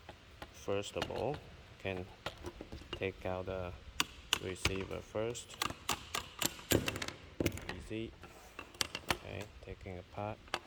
first of all can take out the receiver first. Easy. Okay, taking apart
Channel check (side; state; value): both; identical; correlation 1.00